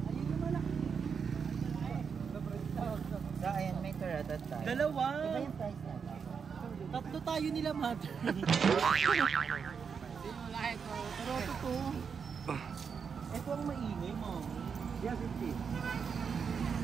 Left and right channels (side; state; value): left; quieter; 6.2 dB